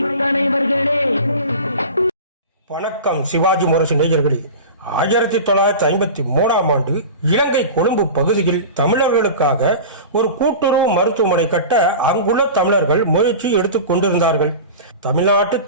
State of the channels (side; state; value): both; inverted; correlation -0.33